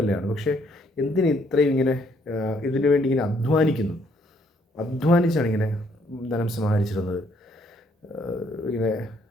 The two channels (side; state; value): both; normal; correlation 0.68